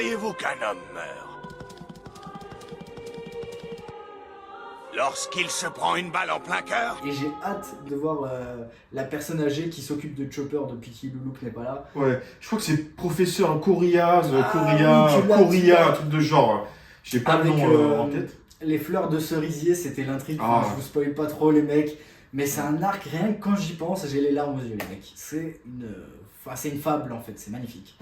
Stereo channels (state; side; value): identical; both; correlation 1.00